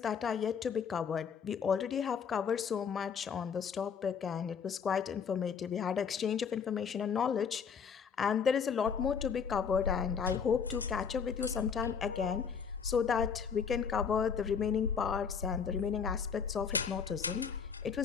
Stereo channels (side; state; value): right; quieter; 6.6 dB